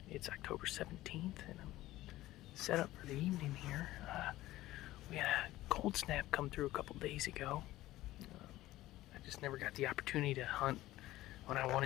It's October 17th, and I'm set up for the evening here. We had a cold snap come through a couple days ago. I just never got the opportunity to hunt when I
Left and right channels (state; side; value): quieter; right; 16.2 dB